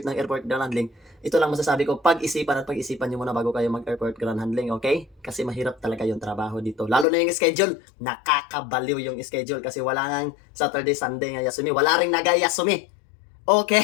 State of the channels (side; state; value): right; drops out; at 7.1 s